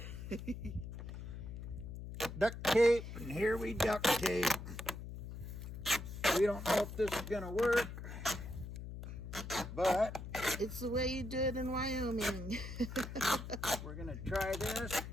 Duct tape, and here we duct tape. We don't know if this is gonna work, but it's the way you do it in Wyoming. we're gonna try this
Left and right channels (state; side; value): noise; left; hum, 9 dB below the sound